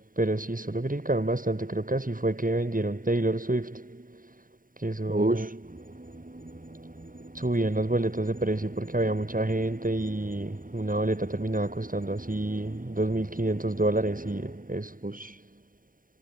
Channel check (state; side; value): late; left; 0.40 ms